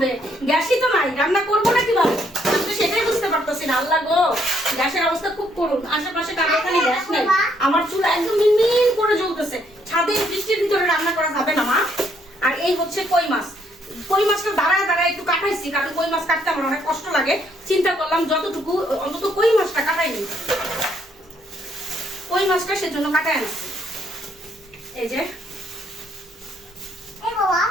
গ্যাসই তো নাই, রান্না করবো না কিভাবে? আমি তো সেটাই বুঝতে পারতেছি না। আল্লাহ গো, গ্যাসের অবস্থা খুব করুন। আশেপাশে কারো এখানে গ্যাস নাই, আমার চুলা একদম মিনমিন করে জ্বলতেছে। ছাদে বৃষ্টির ভিতরে রান্না করা যাবে না মা। আর এই হচ্ছে কই মাছ। কই মাছটা দাঁড়ায় দাঁড়ায় একটু কাটাইছি, কারণ কই মাছ কাটতে আমার অনেক কষ্ট লাগে। চিন্তা করলাম যতটুকু অন্তত কই মাছটা কাটাই নিই, কই মাছটা সেজন্য কাটাই আনছি। এই যে এই বাবা,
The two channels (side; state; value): both; normal; correlation 0.70